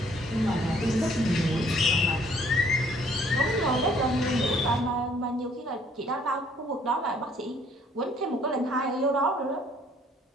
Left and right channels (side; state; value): both; normal; correlation 0.61